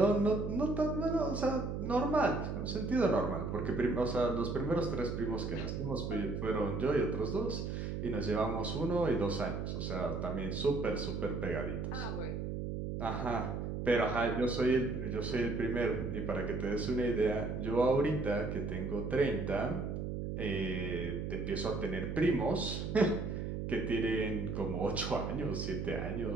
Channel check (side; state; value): right; noise; hum, 3 dB below the sound